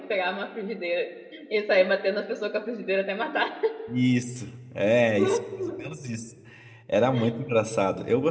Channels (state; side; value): identical; both; correlation 1.00